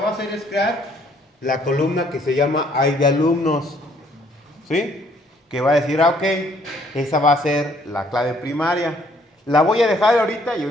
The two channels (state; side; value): normal; both; correlation 0.64